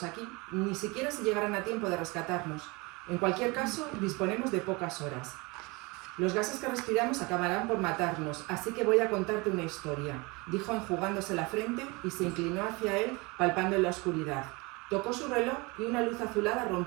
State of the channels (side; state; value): left; quieter; 26.1 dB